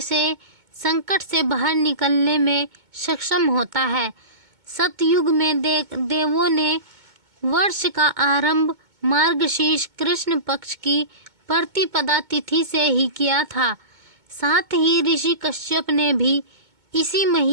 से संकट से बाहर निकलने में सक्षम होता है। सतयुग में देवों ने वर्ष का आरंभ मार्गशीर्ष कृष्ण पक्ष की प्रतिपदा तिथि से ही किया था। साथ ही ऋषि कश्यप ने भी इसी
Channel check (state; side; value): late; left; 2.2 ms